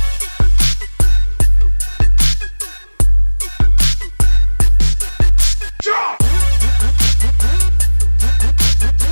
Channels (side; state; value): both; inverted; correlation -1.00